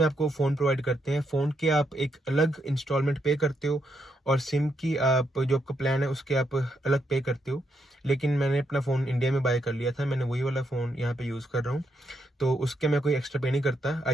आपको फ़ोन प्रोवाइड करते हैं। फ़ोन के आप एक अलग इंस्टॉलमेंट पे करते हो, और सिम की आप जो आपका प्लान है उसके आप अलग पे करते हो। लेकिन मैंने अपना फ़ोन इंडिया में बाय कर लिया था, मैंने वही वाला फ़ोन यहाँ पे यूज़ कर रहा हूँ, तो उसके मैं कोई एक्स्ट्रा पे नहीं करता।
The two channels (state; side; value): normal; both; correlation 0.79